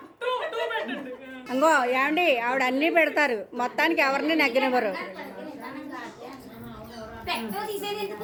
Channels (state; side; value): identical; both; correlation 1.00